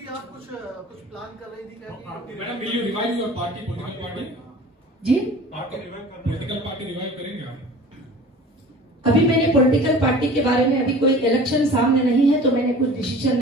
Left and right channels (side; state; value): both; normal; correlation 0.42